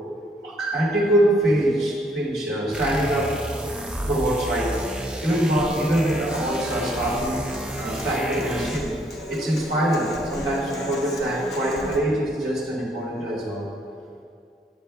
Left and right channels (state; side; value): normal; both; correlation 0.67